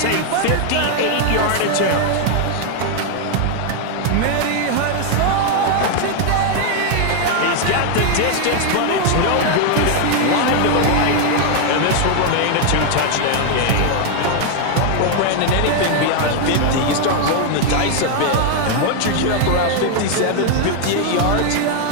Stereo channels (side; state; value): both; different; correlation 0.01